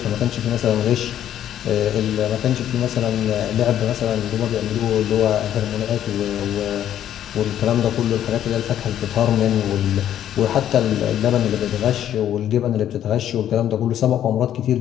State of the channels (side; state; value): right; quieter; 10.9 dB